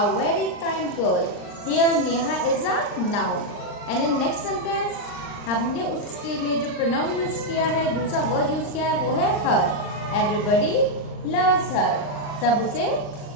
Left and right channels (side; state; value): right; late; 39 ms